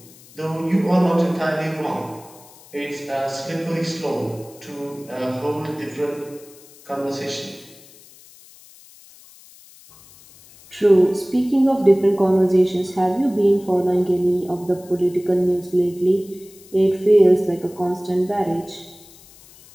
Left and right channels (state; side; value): noise; left; hiss, 23 dB below the sound